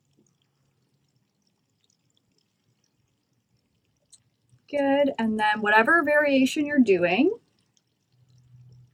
Good, and then whatever variation you're doing,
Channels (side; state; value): both; identical; correlation 1.00